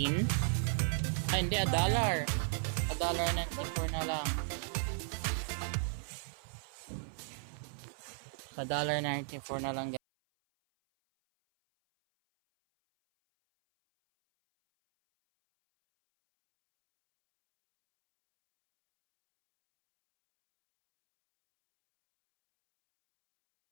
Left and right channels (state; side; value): silent; left; 54 dB below the other